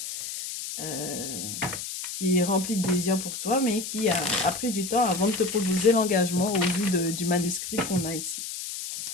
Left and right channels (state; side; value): noise; left; hiss, 7 dB below the sound